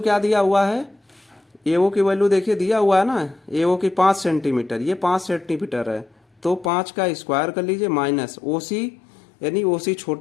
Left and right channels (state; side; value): drops out; right; at 6.7 s